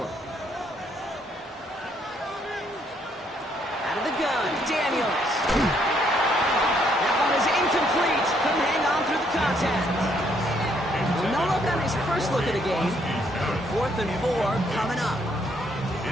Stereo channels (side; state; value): both; normal; correlation 0.70